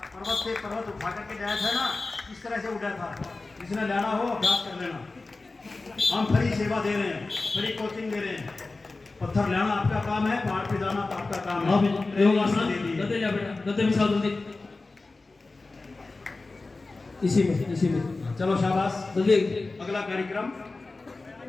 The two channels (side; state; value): right; quieter; 3.5 dB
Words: से पर्वत उठा करके जाया था ना, इस तरह से उठा था। जिसने लेना हो अभ्यास कर लेना। हम फ्री सेवा दे रहे हैं, फ्री कोचिंग दे रहे हैं। पत्थर लेना आपका काम है, पहाड़ पे जाना तो आपका काम है। इसी में चलो शाबाश। जल्दी। अगला कार्यक्रम,